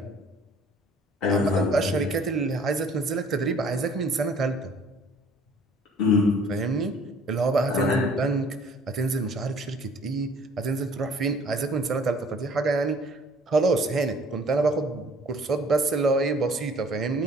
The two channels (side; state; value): both; normal; correlation 0.54